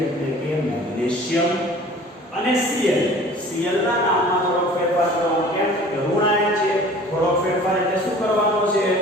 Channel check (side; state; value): both; normal; correlation 0.46